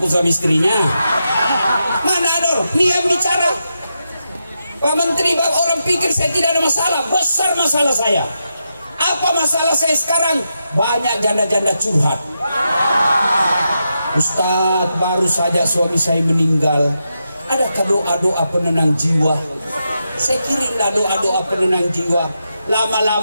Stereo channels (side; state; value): both; inverted; correlation -0.86